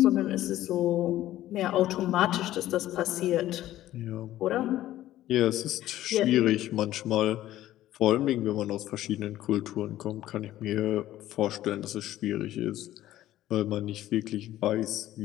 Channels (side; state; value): right; quieter; 14.0 dB